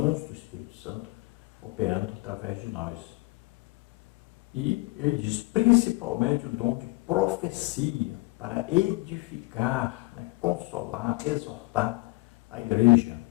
do Espírito Santo operando através de nós. E ele diz principalmente o dom de profecia, para edificar, consolar, exortar a igreja.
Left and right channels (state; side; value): quieter; right; 23.3 dB